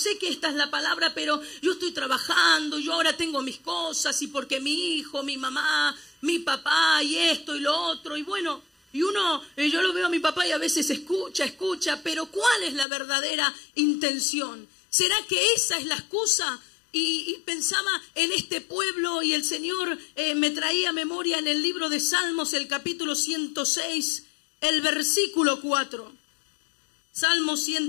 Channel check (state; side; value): drops out; right; at 12.9 s